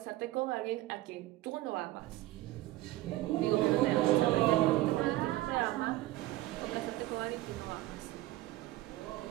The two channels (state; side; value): quieter; left; 16.9 dB